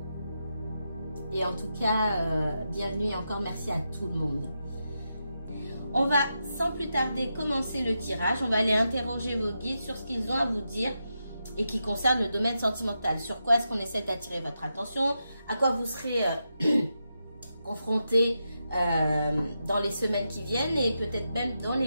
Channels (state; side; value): inverted; both; correlation -0.86